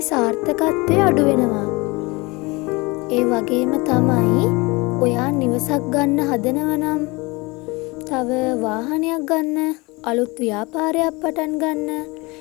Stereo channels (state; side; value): quieter; right; 24.9 dB